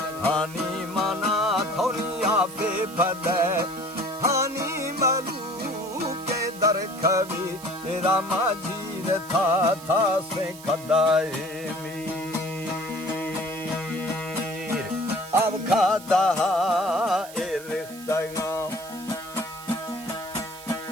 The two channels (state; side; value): noise; right; hiss, 17 dB below the sound